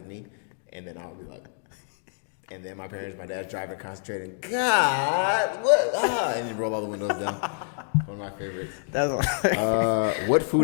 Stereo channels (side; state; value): right; silent; digital silence